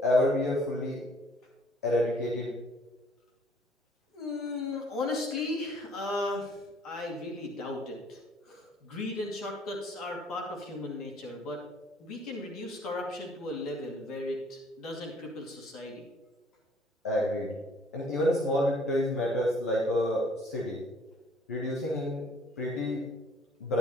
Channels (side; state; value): both; normal; correlation 0.59